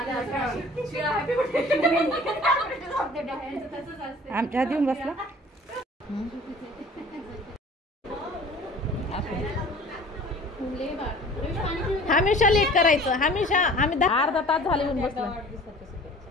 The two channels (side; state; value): both; normal; correlation 0.47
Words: आमच्या हात येऊन बसला. हमेशा लेट करायचं, हमेशा. आम्ही अर्धा तास झाले येऊन बसलो.